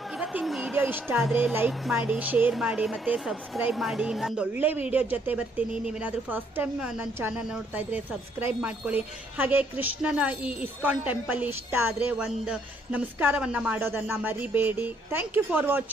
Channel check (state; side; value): normal; both; correlation 0.69